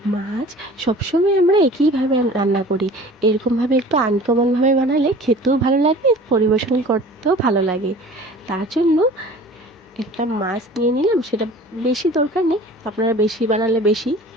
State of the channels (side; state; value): both; normal; correlation 0.44